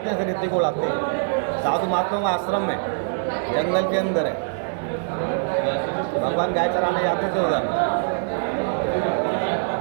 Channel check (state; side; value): silent; left; digital silence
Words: हैं, फिर रेती को उड़ाते हैं। साधु महात्माओं का आश्रम है, जंगल के अंदर है। भगवान गाय चराने जाते थे उधर।